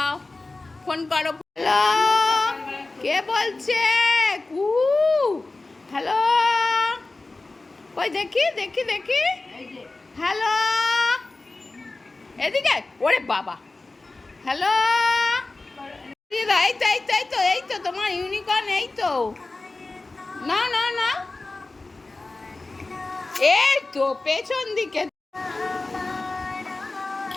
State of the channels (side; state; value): right; quieter; 3.3 dB